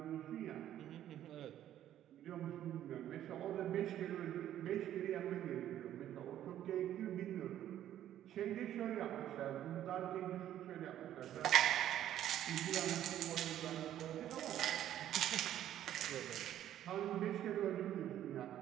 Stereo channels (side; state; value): left; quieter; 11.7 dB